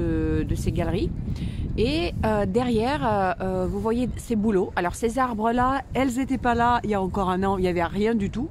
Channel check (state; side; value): identical; both; correlation 1.00